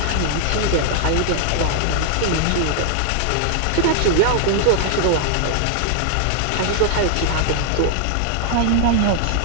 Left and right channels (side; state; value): both; different; correlation 0.00